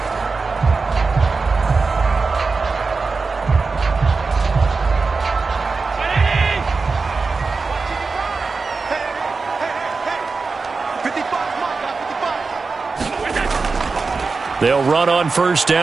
They'll run on first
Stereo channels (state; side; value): quieter; left; 4.3 dB